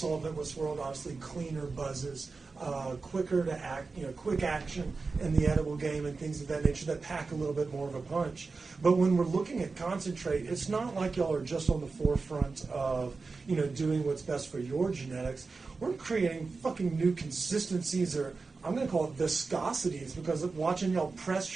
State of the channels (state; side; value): quieter; left; 4.2 dB